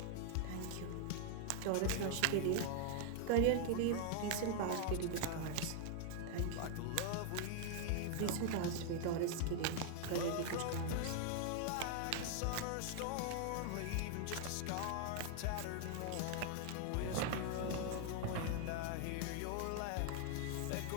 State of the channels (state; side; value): different; both; correlation 0.00